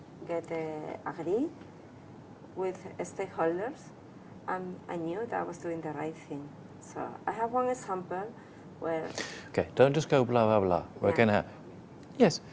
get agree with stakeholders, and I knew that I was doing the right thing. So I have one example where... Okay, don't just go blah, blah, blah. We're going to... Yes,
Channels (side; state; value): both; identical; correlation 1.00